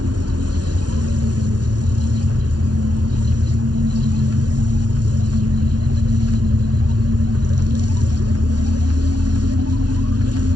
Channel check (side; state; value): left; late; 0.69 ms